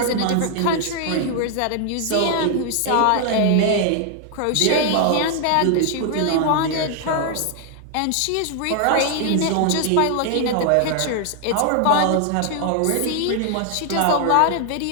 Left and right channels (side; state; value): both; different; correlation 0.00